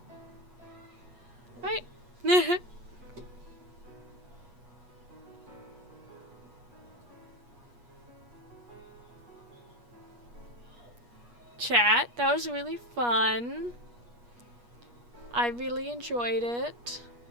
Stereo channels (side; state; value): left; late; 8.4 ms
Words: Right? Chat, that was really fun. I really enjoyed it.